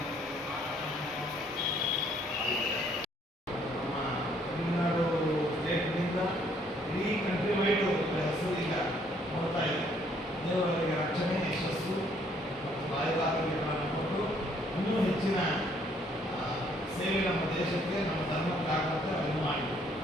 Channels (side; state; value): both; normal; correlation 0.65